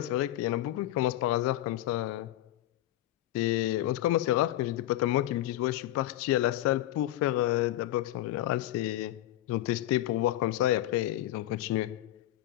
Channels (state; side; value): quieter; right; 14.6 dB